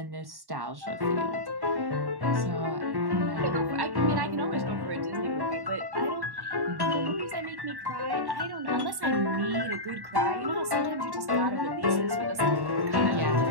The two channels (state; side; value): late; left; 1.1 ms